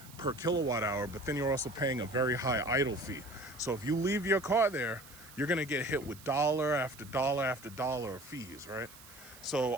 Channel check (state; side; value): noise; right; hiss, 20 dB below the sound